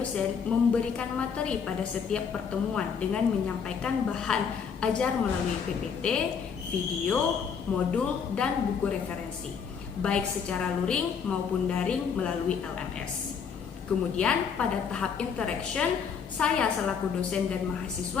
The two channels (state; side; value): quieter; right; 6.5 dB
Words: memberikan materi pada setiap pertemuan dengan menyampaikan bahan ajar melalui PPT, video, modul, dan buku referensi, baik secara luring maupun daring melalui LMS. Kemudian pada tahap interaction, saya selaku dosen dan